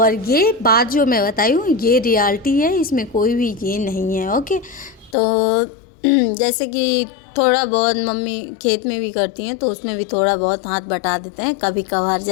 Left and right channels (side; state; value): right; drops out; at 5.2 s